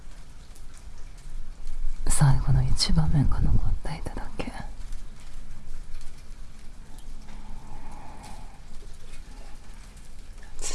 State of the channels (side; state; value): both; identical; correlation 1.00